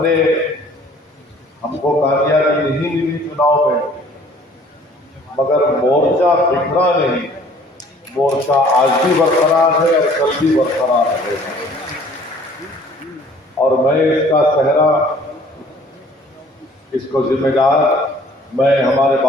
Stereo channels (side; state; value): both; normal; correlation 0.54